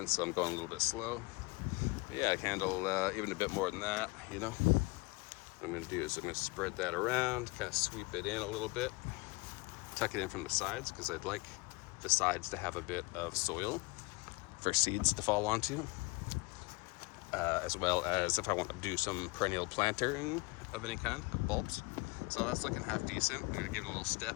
so I'm going a little bit slow. But yeah, I can handle even a bit more than that, What I'm going to do is I'm going to spread that around, kind of sweep it in a little bit, tuck it in from the sides, because I'd like the sides to have a bit of soil for seeds to fall onto, as well as if I want to do some perennial planting of any kind, of bulbs. So that's looking half decent. I'm going to give it a little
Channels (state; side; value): quieter; right; 26.1 dB